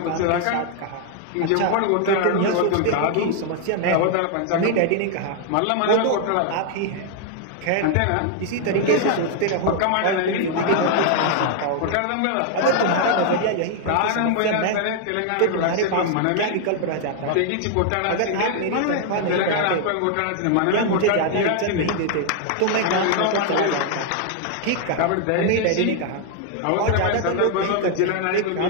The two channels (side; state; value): both; different; correlation 0.00